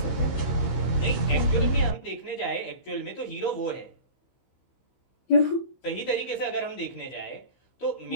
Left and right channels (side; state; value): right; late; 15 ms